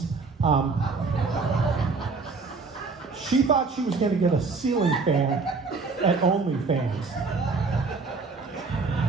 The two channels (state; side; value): quieter; left; 4.3 dB